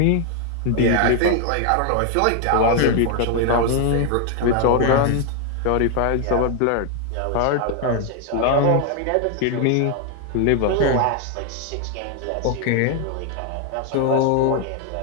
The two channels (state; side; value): different; both; correlation 0.00